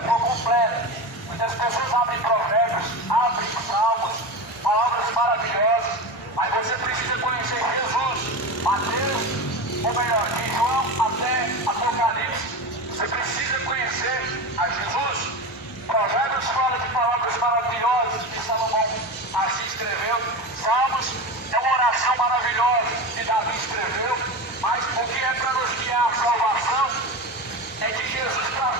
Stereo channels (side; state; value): both; normal; correlation 0.23